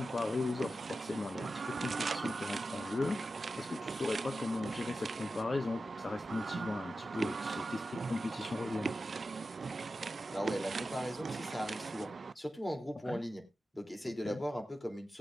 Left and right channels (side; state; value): both; normal; correlation 0.92